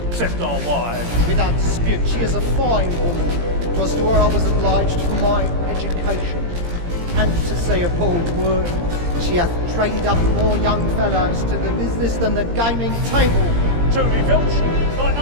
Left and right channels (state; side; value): late; left; 17 ms